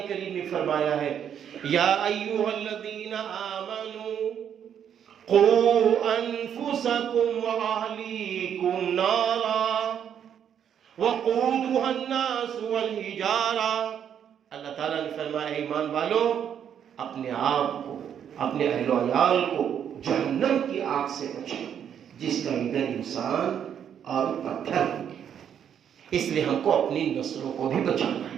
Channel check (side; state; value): left; quieter; 8.8 dB